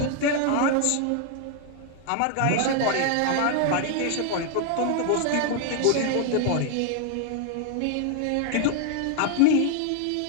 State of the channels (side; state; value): both; different; correlation 0.00